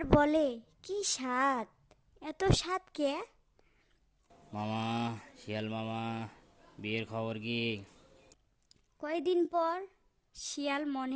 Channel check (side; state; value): both; identical; correlation 1.00